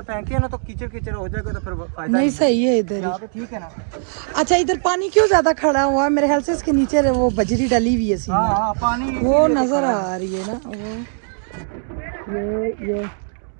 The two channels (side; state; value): left; silent; digital silence